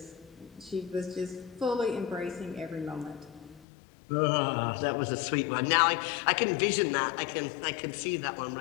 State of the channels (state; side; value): drops out; right; at 3.7 s